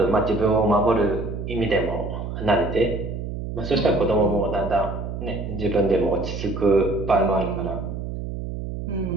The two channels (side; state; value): right; noise; hum, 6 dB below the sound